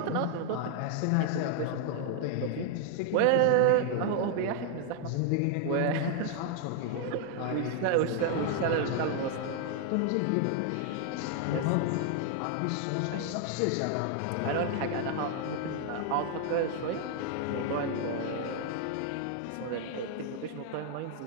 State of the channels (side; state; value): both; different; correlation 0.00